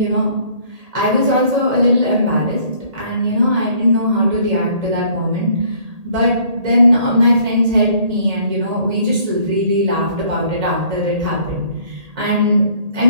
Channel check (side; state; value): left; late; 1.8 ms